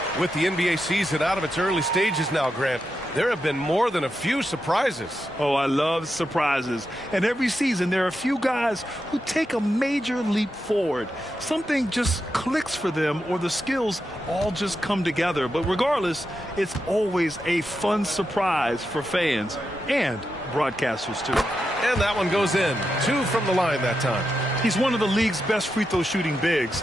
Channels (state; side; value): normal; both; correlation 0.87